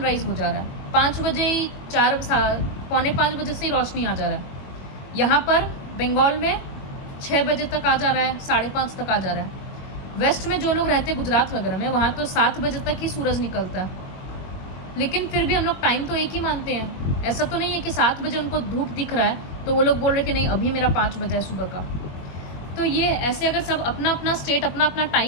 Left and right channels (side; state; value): right; late; 21 ms